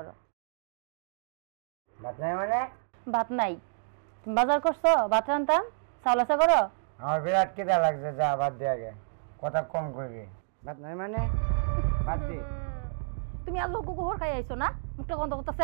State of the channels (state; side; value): silent; left; digital silence